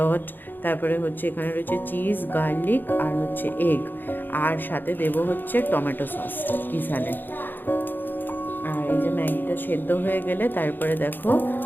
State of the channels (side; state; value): right; late; 0.092 ms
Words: তারপরে হচ্ছে এখানে রয়েছে চিজ, গার্লিক আর হচ্ছে এগ, আর সাথে দেবো হচ্ছে টমেটো সস কিসালে। আর এই যে ম্যাগিটা সেদ্ধ হয়ে গেলে তারপরে দেখো